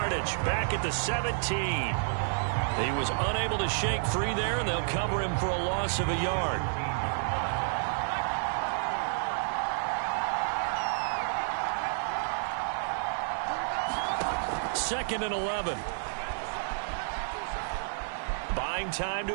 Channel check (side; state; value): left; silent; 58 dB below the other